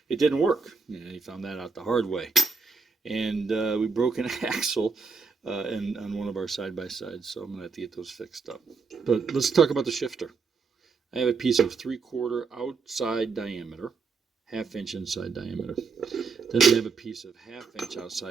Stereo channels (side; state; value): left; quieter; 4.9 dB